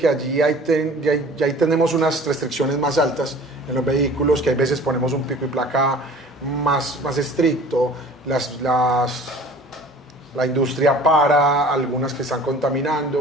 allí ahí tenemos unas restricciones más altas en los vehículos, que hay veces ponemos un pico y placa más estricto, la industria para, algunas que están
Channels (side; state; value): both; normal; correlation 0.46